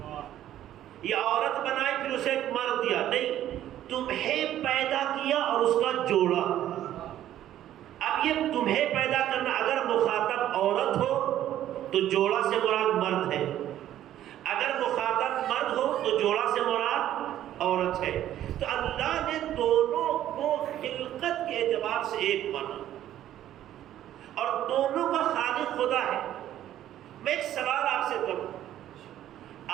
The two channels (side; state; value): left; quieter; 12.2 dB